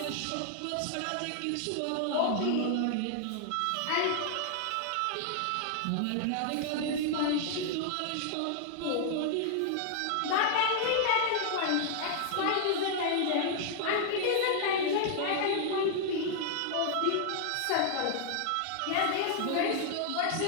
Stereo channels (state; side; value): different; both; correlation 0.00